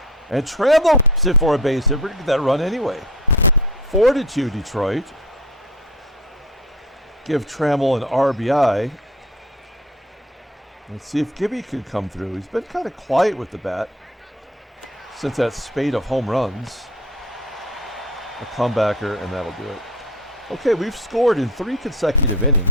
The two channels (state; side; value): normal; both; correlation 0.39